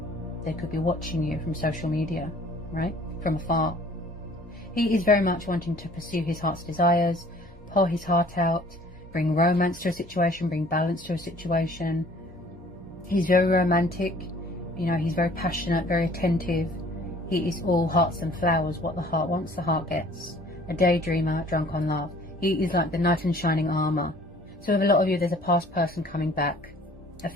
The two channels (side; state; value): both; normal; correlation 0.53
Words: They could be watching you from social media, right? From afar. He is very much wanting to pursue his heart's desires, pour his heart out, bring romance to a situation, bring balance to a situation. He's very romantic, you know, he's very passionate, very attentive. He is all hearts and flowers. What the heart wants, the heart gets. A daydreamer, drunk on love. He is like the knight in shining armour. So with a lot of you, there's a past person coming back, a